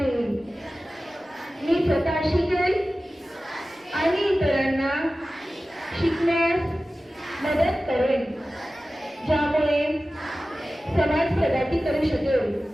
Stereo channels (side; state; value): both; normal; correlation 0.96